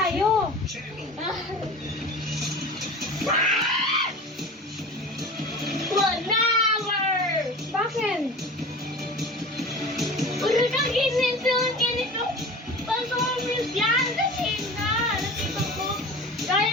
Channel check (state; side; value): normal; both; correlation 0.36